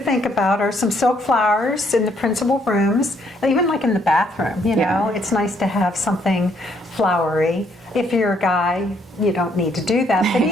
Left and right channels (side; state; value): both; normal; correlation 0.69